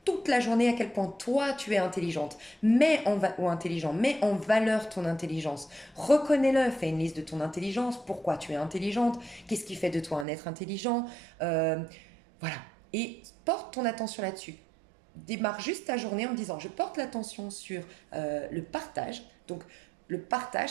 toute la journée à quel point toi tu es intelligente, ou intelligent, mets en valeur ton intelligence. Reconnais-le, fais une liste de ton intelligence, pourquoi tu es intelligente, qu'est-ce qui fait de toi un être intelligent, euh, voilà. Et porte ton attention là-dessus. Démarre juste ta journée en me disant je porte l'attention sur le partage. Donc le partage,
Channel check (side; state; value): left; drops out; at 10.2 s